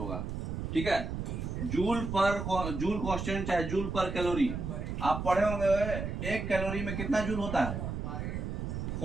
ठीक है। जूल कांस्टेंट चाहे जूल पर कैलोरी, आप पढ़े होंगे, एक कैलोरी में कितना जूल होता है,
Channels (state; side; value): noise; right; rumble, 4 dB below the sound